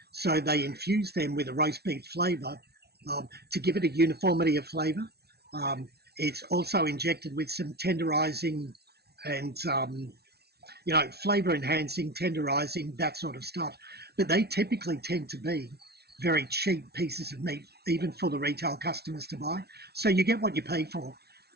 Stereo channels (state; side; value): late; left; 0.47 ms